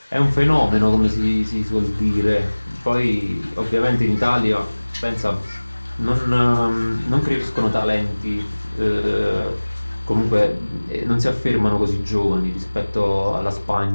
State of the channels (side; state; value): both; inverted; correlation -1.00